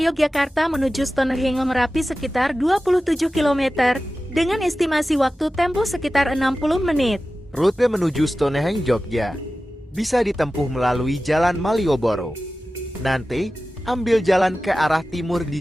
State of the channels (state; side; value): normal; both; correlation 0.95